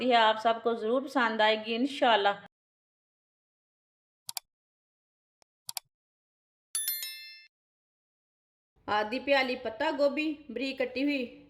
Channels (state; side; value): identical; both; correlation 1.00